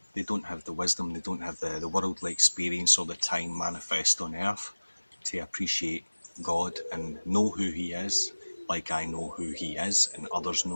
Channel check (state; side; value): inverted; both; correlation -1.00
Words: They don't have the wisdom, they don't have the worldly experience or the time manifest on earth to appreciate God and know who He is, like I know who He is and others